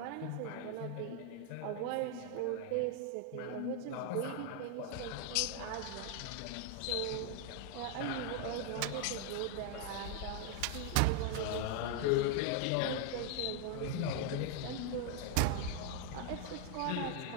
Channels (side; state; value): both; different; correlation 0.00